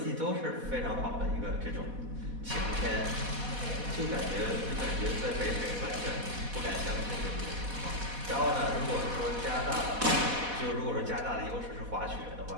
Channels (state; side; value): late; left; 4.1 ms